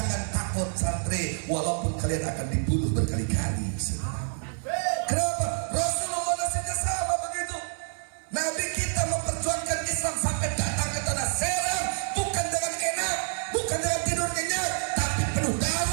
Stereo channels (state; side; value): silent; left; digital silence